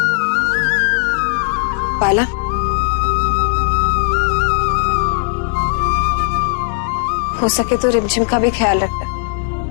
बाला, हो सके तो रिमझिम का भी ख्याल रखना।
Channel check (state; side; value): silent; right; digital silence